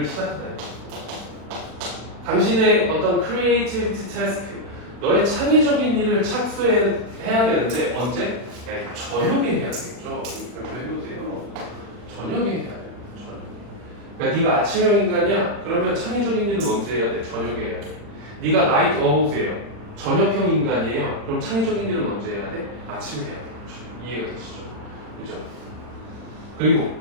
시작하다. 당신의 어떤 creativity task, 너의 창의적인 일을 착수해야 되는데 언제? 네, 저녁에 해야 되겠죠. 그렇게 해보세요. 저녁에 해야 돼요. 저녁. 그러니까 네가 아침형 인간이야. 그러면 창의적인 일은 언제 해야 돼? 저녁에 해야 돼. 네가 나이트 어우세요. 저녁형 인간이에요. 그럼 창의적인 일은 언제 해야 돼? 아침에 해야 돼. 그렇죠? 이해가 되시죠? 그죠? 그리고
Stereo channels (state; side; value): late; left; 40 ms